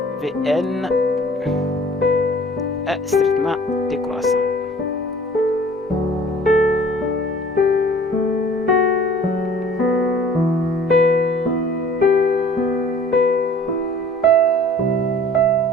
Vn est strictement décroissant.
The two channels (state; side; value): normal; both; correlation 0.51